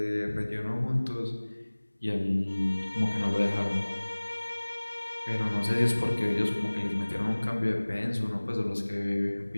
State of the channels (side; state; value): both; inverted; correlation -1.00